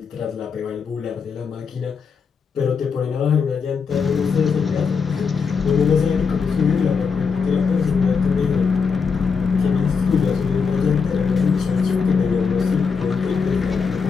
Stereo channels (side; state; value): right; quieter; 5.6 dB